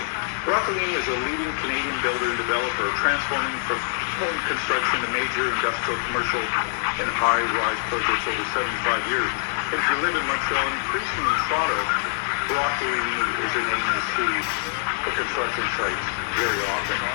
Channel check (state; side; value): silent; right; 62 dB below the other